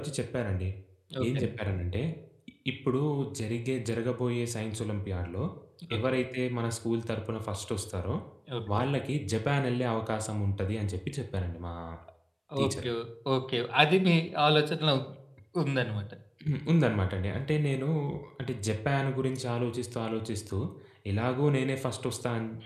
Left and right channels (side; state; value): both; identical; correlation 1.00